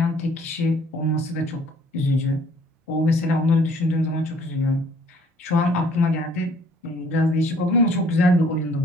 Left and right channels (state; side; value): normal; both; correlation 0.58